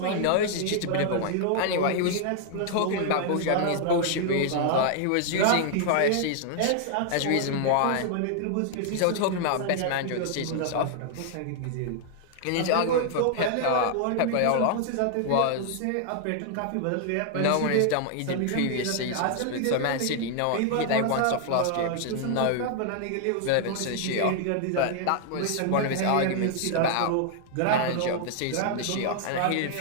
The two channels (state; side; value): different; both; correlation 0.00